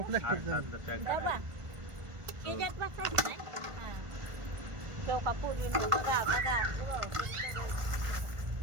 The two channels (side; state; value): left; late; 1.5 ms